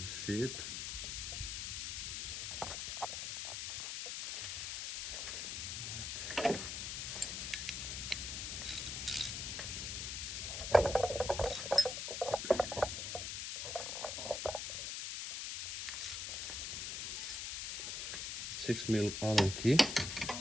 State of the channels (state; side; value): noise; left; hiss, 3 dB below the sound